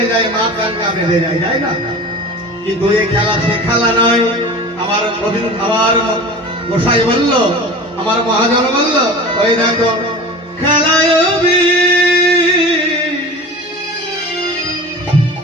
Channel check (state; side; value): normal; both; correlation 0.35